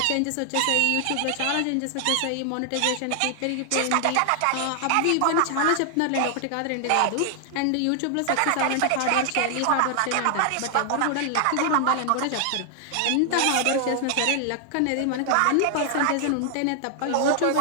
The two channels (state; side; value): different; both; correlation 0.00